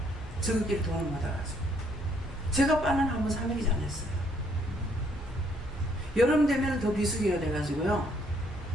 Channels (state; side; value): normal; both; correlation 0.67